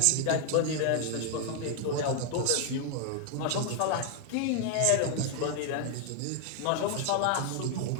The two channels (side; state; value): both; different; correlation 0.00